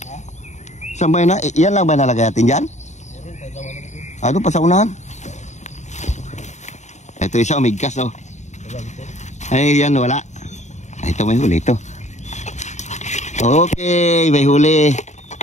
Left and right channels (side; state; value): right; late; 0.34 ms